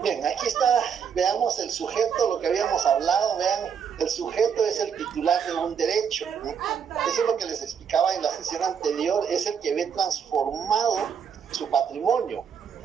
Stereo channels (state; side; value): quieter; left; 7.3 dB